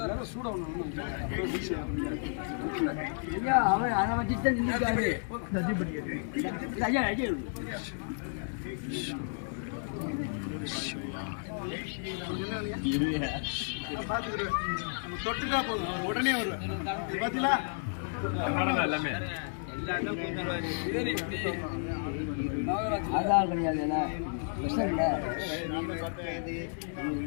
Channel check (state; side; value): silent; right; digital silence